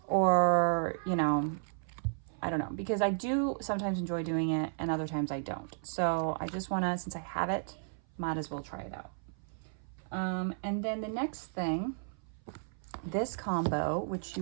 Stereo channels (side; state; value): left; silent; 55 dB below the other